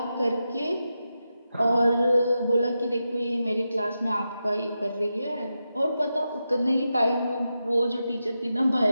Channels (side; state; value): both; inverted; correlation -0.89